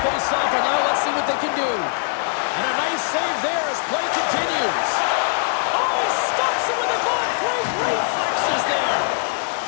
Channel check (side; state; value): right; silent; 65 dB below the other